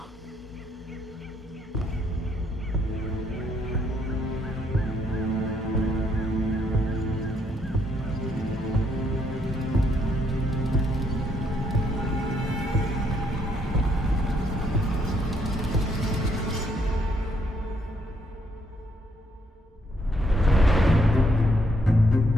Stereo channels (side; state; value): both; normal; correlation 0.72